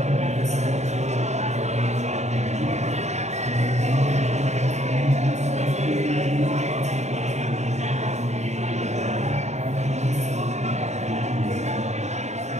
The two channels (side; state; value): left; late; 0.33 ms